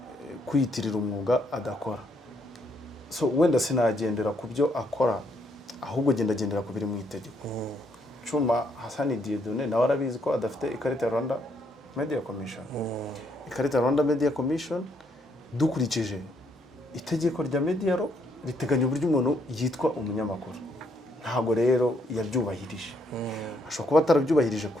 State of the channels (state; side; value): normal; both; correlation 0.72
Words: kwiyitirira umwuga adakora. So wenda sinagendera ku byo akora, ahubwo gendera ku biri mu itegeko. Cyuma Hasani Dieudonné nawe arabizi ko adafite ikarita ya Rwanda Media Commission. Ikarita ya Rwanda Media Commission dukurikije itegeko rya media law riteganya uburyo umuntu yitwa umunyamakuru. Ntago rero yabyubahirije. Ashobora kuba atarabyubahirije